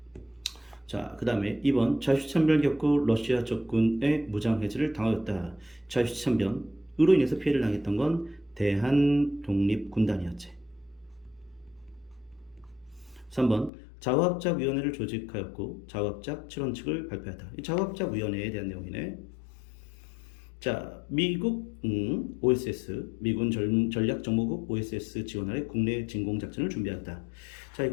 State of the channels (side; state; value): right; drops out; at 13.7 s